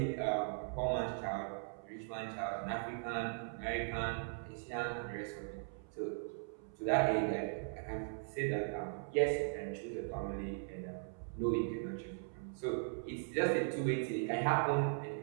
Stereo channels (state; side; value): silent; left; 52 dB below the other